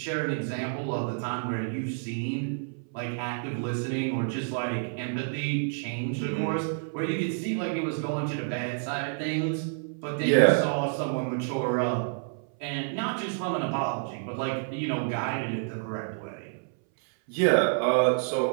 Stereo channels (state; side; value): silent; left; 59 dB below the other